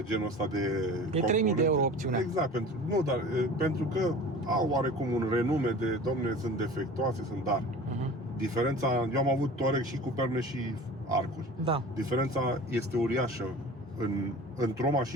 genul ăsta de e 3.000 de euro opțiunea. Exact, pentru că au oarecum un renume de, domne, sunt defectuoase, dar diferența, eu am avut Touareg și cu perne și arcuri. Da. Diferența este uriașă. Într-o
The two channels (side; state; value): both; normal; correlation 0.40